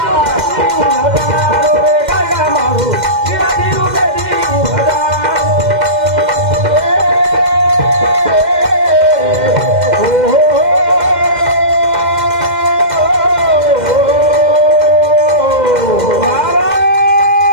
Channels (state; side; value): late; left; 2.1 ms